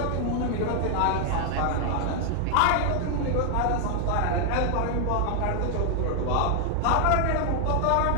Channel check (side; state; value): both; different; correlation 0.00